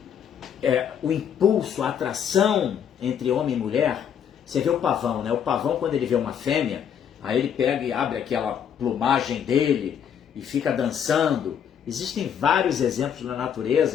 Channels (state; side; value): quieter; right; 8.5 dB